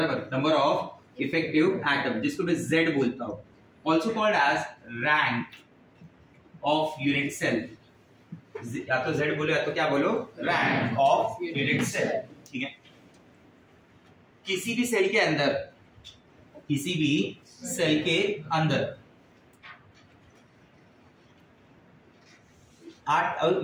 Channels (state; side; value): identical; both; correlation 1.00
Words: नंबर ऑफ इफेक्टिव एटम, जिसको मैं Z बोलता हूं, also called as rank of unit cell। या तो Z बोलो या तो क्या बोलो? rank of unit cell, ठीक है। किसी भी सेल के अंदर, किसी भी सेल के अंदर 8,